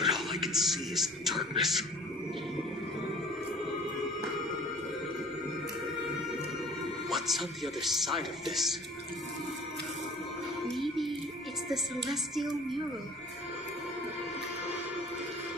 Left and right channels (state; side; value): normal; both; correlation 0.48